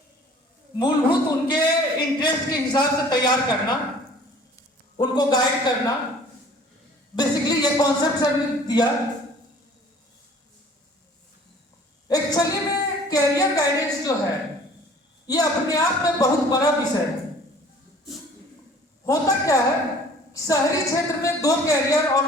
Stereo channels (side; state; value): both; normal; correlation 0.50